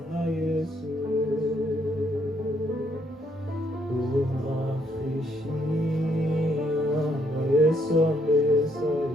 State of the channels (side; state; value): both; normal; correlation 0.71